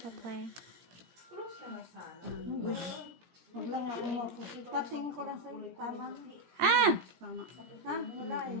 ba play? Huwag lang ako mapusit. Patingin ko lang sa tama. Ah! Tama. Ha? Wala eh.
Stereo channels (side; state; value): left; late; 17 ms